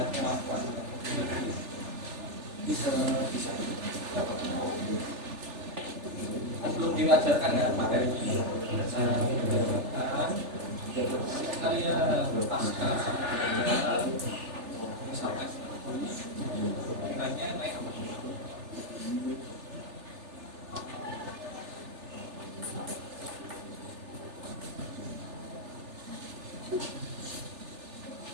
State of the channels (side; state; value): left; late; 3.4 ms